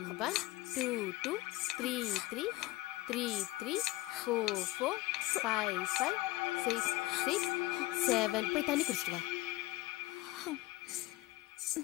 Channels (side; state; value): right; quieter; 19.4 dB